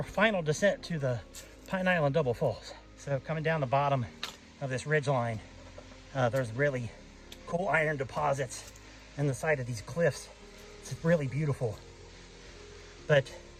final descent to the Pine Island Double Falls. So coming down the bottom of this ridge line, there's really cool iron deposits in the side of these cliffs. It's really beautiful. But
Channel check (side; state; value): both; identical; correlation 1.00